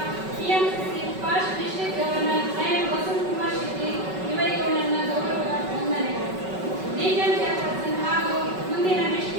TMC first district governor lion Vasanth Kumar Shetty ಇವರಿಗೂ ನನ್ನ ಗೌರವದ ವಂದನೆಗಳು. ರೀಜನ್ ಚೇರ್ಪರ್ಸನ್ ಹಾಗೂ ಮುಂದಿನ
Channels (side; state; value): left; late; 5.3 ms